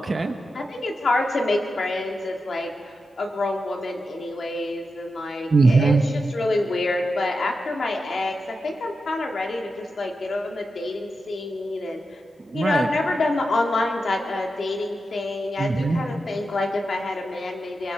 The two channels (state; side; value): normal; both; correlation 0.89